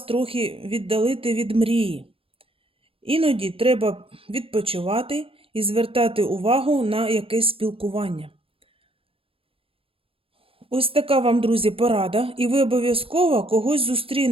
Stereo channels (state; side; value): late; left; 0.27 ms